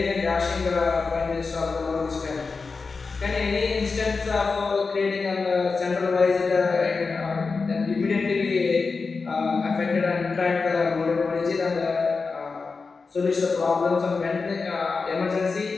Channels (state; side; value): quieter; right; 4.5 dB